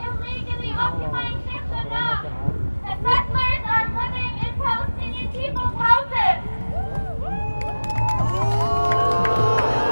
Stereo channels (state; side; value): inverted; both; correlation -1.00